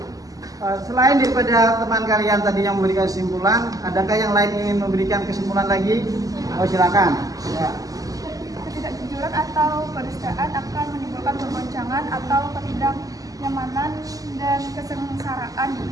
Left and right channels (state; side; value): late; left; 0.17 ms